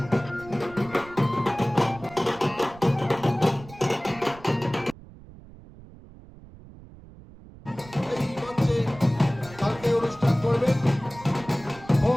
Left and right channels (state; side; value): noise; right; rumble, 19 dB below the sound